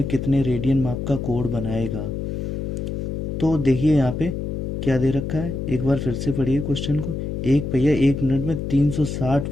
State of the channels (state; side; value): noise; left; hum, 4 dB below the sound